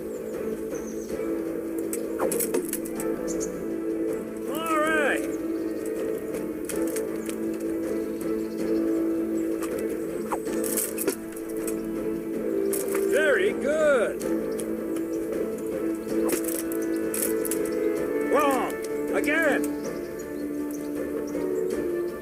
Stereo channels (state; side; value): identical; both; correlation 1.00